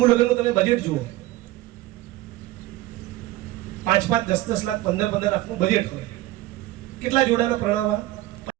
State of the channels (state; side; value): quieter; left; 16.7 dB